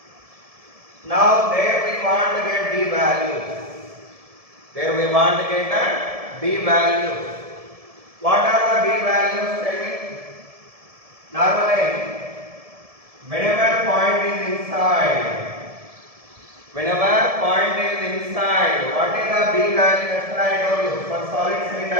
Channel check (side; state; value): left; late; 1.7 ms